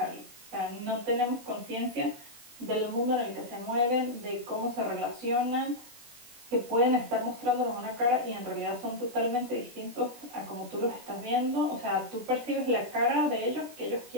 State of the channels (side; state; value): left; late; 21 ms